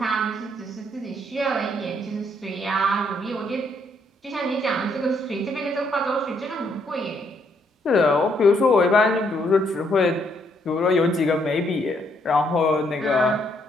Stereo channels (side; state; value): both; normal; correlation 0.72